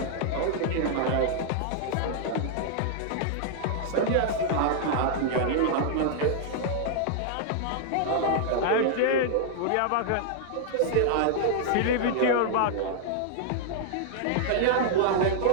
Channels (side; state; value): both; different; correlation -0.01